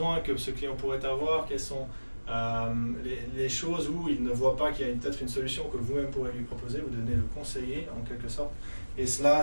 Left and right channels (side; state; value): both; inverted; correlation -1.00